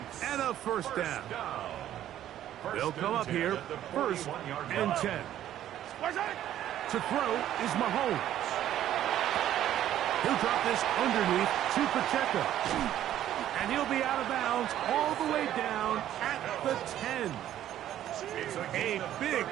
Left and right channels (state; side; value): quieter; left; 11.9 dB